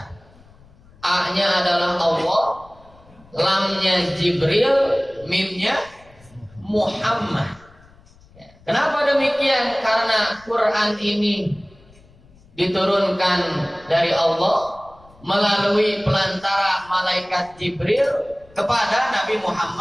A-nya adalah Allah, lamnya Jibril, mimnya Muhammad. Kenapa demikian? Karena Quran ini diturunkan dari Allah melalui pelantara malaikat Jibril kepada Nabi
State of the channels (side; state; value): left; noise; rumble, 26 dB below the sound